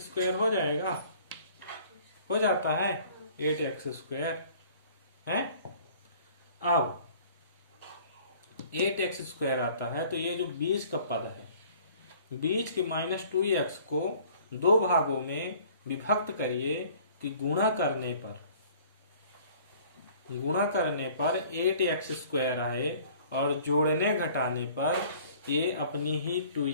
हो जाएगा। हो जाता है 8x स्क्वायर है। अब 8x स्क्वायर आता है तो ये जो बीच का पद है, बीच के -2x को दो भागों में विभक्त करिए कि गुणा करने पर 8x स्क्वायर आए और जोड़ने घटाने पर ये अपनी ही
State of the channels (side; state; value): both; inverted; correlation -0.52